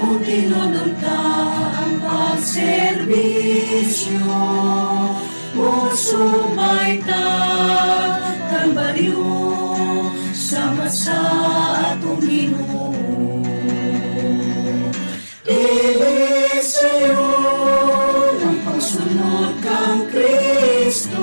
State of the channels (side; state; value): both; inverted; correlation -1.00